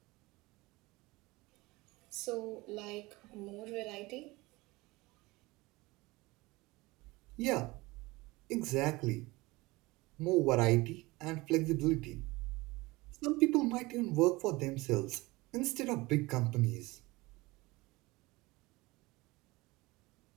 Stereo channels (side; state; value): left; quieter; 22.0 dB